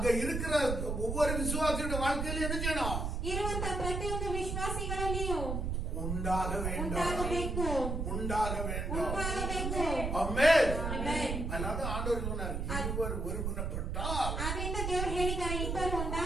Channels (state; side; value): noise; right; rumble, 2 dB below the sound